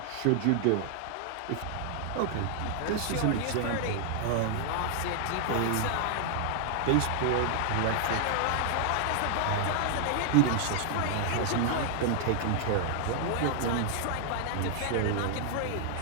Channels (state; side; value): different; both; correlation 0.00